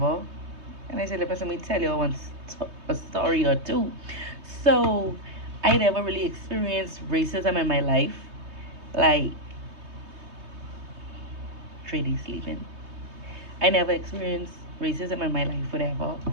And I said, let me tell you a story or two. So I never really experienced racism in my life. Like, Trady sleeping. I never experienced racism in my life, whatever.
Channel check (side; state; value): left; late; 3.2 ms